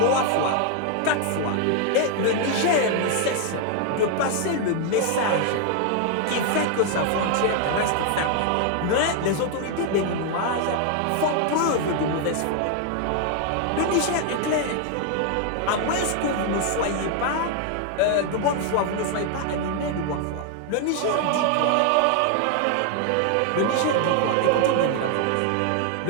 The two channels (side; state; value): both; different; correlation 0.00